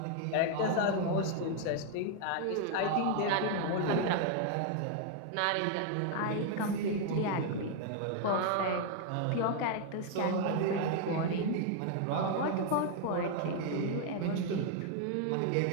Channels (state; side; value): different; both; correlation 0.00